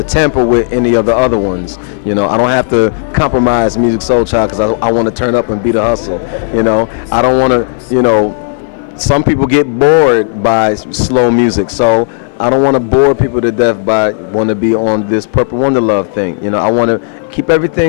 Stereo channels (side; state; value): right; silent; digital silence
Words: tamper with any of the other ones. You know, I don't have to compromise Musiq Soulchild because I want to turn up and be the hustle. You know, I don't want to, you know, some people get bored by slow music, so I don't want to bore people to death by want to be on this Purple Wondaluv thing. You know, I want to keep